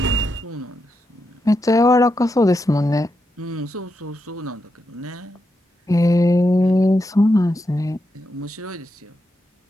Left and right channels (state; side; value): normal; both; correlation 0.85